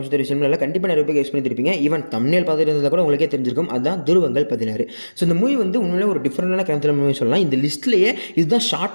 விஷயம் இல்லை, கண்டிப்பாக நிறைய பேர் யூஸ் பண்ணியிருப்பீங்க. ஈவன் தம்ப்நெயில் பார்த்துட்டு இருந்தால் கூட உங்களுக்கே தெரிஞ்சிருக்கும், அதுதான் துருவங்கள் 16. ஸோ இந்த மூவி வந்து உண்மையிலே ஒரு டிஃப்ரெண்டான க்ரைம் த்ரில்லர் மூவி சொல்லலாம். இந்த லிஸ்ட்லேயே இதுதான்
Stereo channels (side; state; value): both; inverted; correlation -1.00